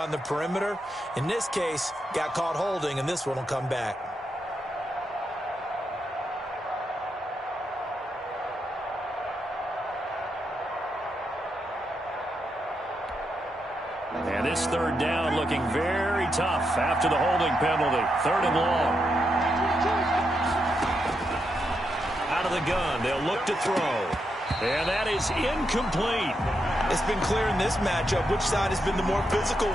the perimeter. In this case, got caught holding, and this one will come back. And this 3rd down looking very tough after the holding penalty. 3rd and long. Out of the gun, they'll look to throw. And that is incomplete. It's been clear in this matchup which side has been the more physical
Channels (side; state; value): both; normal; correlation 0.83